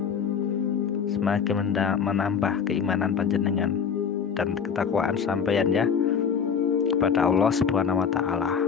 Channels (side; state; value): right; quieter; 6.8 dB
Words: semakin menambah keimanan panjenengan dan ketakwaan sampeyan ya kepada Allah Subhanahu wa taala.